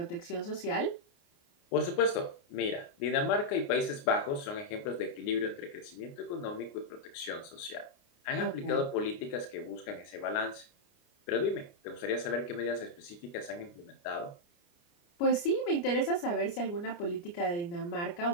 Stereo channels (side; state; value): right; late; 29 ms